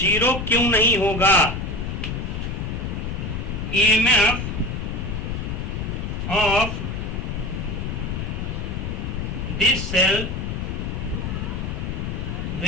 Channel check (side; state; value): left; noise; rumble, 3 dB below the sound